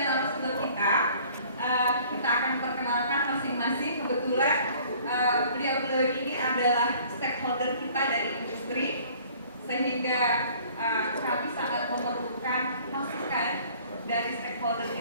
kita. Kita akan perkenalkan masing-masing. Kebetulan beliau-beliau ini adalah stakeholder kita dari industri, sehingga kami sangat memerlukan masukan dari stakeholder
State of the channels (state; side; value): inverted; both; correlation -0.54